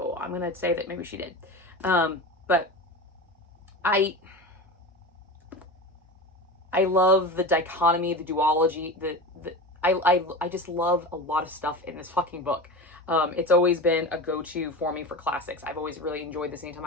I'm gonna say that maybe she did. But I love the dichotomy, the duology, I just love a lot of stuff in this fucking book. It's always been a go-to for me for classics. I've always really enjoyed this anytime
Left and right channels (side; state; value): both; normal; correlation 0.28